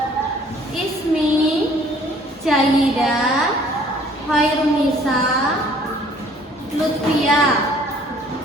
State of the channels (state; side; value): normal; both; correlation 0.57